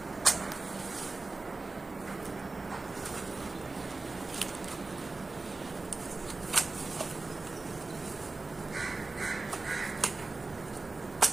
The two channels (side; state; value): left; quieter; 3.5 dB